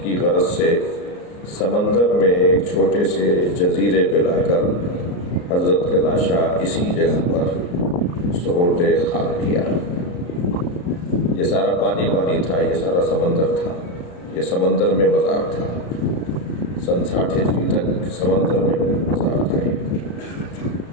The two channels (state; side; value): late; right; 34 ms